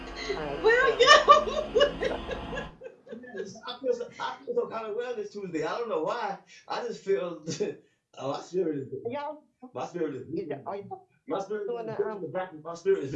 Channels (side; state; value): both; identical; correlation 1.00